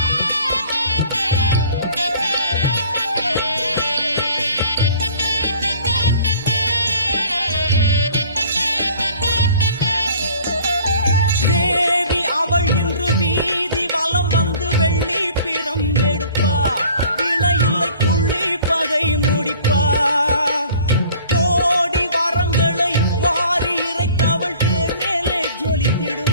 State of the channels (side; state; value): both; inverted; correlation -0.50